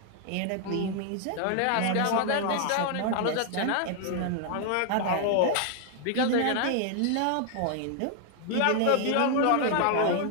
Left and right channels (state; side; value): different; both; correlation 0.00